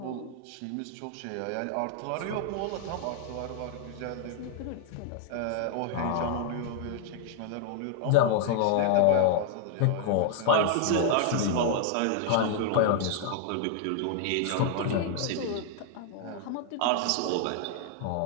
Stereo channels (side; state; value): both; different; correlation 0.00